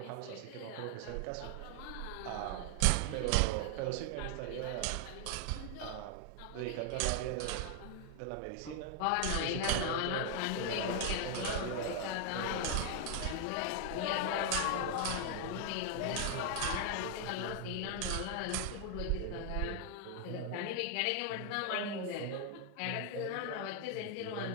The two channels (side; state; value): both; different; correlation 0.00